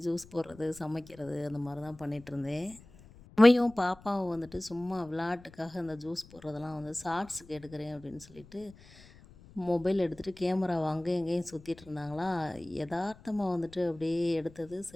ஜூஸ் போடுறது, சமைக்கிறது அந்த மாதிரி தான் பண்ணிகிட்ருந்தேன். அம்மியும் பாப்பாவும் வந்துட்டு சும்மா விளையாட்டுக்காக அந்த ஜூஸ் போடுறதெல்லாம் வந்து ஷார்ட்ஸுக்கு எடுக்கிறேன் அப்படின்னு சொல்லிட்டு மொபைல் எடுத்துகிட்டு கேமராவை அங்கேயும் இங்கேயும் சுற்றிட்டு இருந்தாங்களா. எதார்த்தமாக வந்துட்டு அப்படியே எடுத்தது.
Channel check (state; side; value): noise; left; rumble, 22 dB below the sound